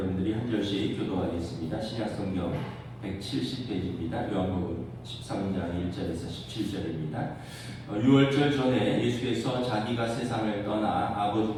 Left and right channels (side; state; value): both; identical; correlation 1.00